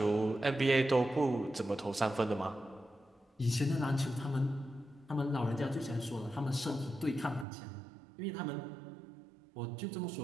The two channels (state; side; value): drops out; left; at 7.5 s